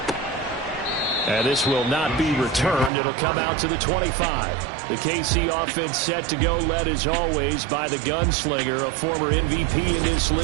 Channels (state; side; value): drops out; left; at 2.9 s